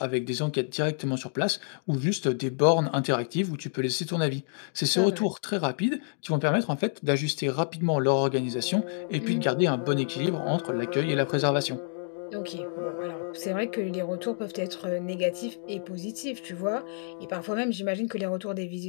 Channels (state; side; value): silent; right; digital silence